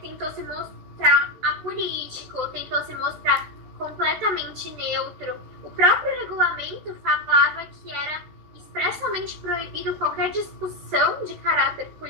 se mostrar apolítico, tentou se mostrar completamente neutro. O próprio regulamento falava que era expressamente proibido qualquer discussão de caráter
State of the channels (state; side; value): late; left; 13 ms